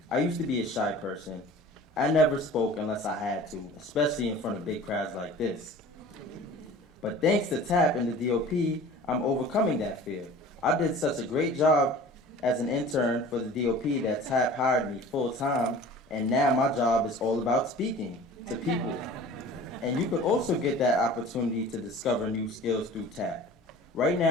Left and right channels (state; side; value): normal; both; correlation 0.43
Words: I used to be a shy person. I never spoke unless I had to, especially in front of big crowds like this. But thanks to TAP and the DOP, I'm overcoming that fear. I did such a great job as an intern for the DOP that TAP hired me full-time, and now my job is all about speaking to people. And you could also get that opportunity to discover new skills through TAP. Right